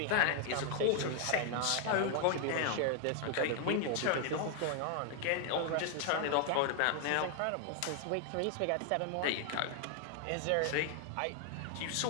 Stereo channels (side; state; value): both; different; correlation 0.00